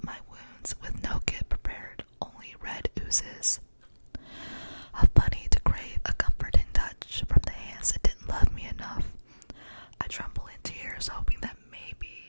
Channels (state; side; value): inverted; both; correlation -1.00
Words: my wounds with no kit prepared, only red oozes. How funny to crave a comforting touch from the hands that didn't love me enough. I tremble in tears, hoping that